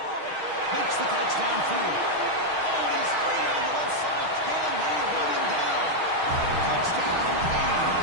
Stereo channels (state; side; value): late; left; 6.4 ms